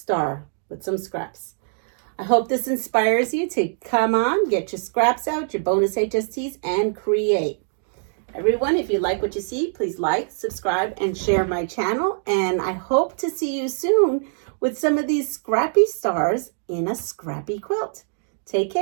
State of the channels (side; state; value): left; silent; digital silence